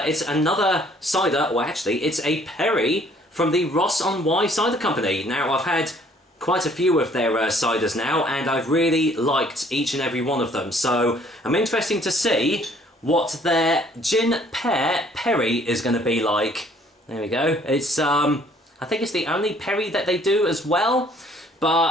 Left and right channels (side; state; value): both; normal; correlation 0.60